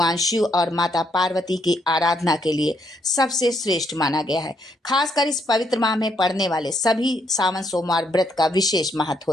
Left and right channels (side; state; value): both; normal; correlation 0.74